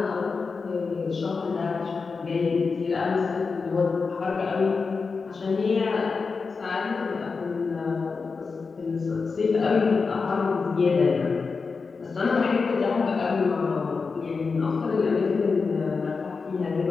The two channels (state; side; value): quieter; right; 4.7 dB